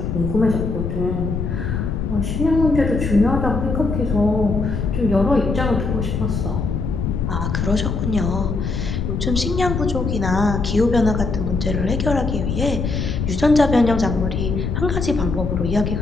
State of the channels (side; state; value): left; noise; rumble, 2 dB below the sound